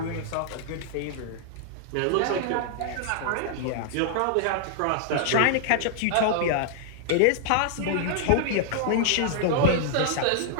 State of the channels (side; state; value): both; different; correlation -0.01